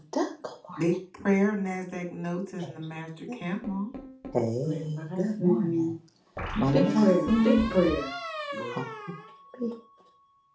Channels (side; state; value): both; identical; correlation 1.00